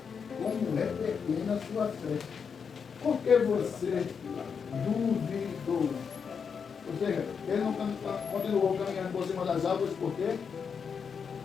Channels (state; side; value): quieter; right; 6.3 dB